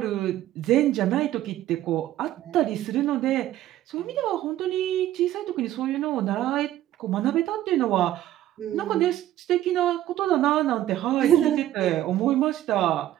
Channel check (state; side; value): quieter; left; 13.4 dB